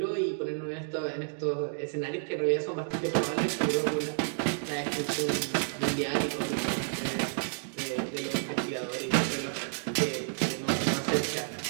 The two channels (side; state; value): left; silent; digital silence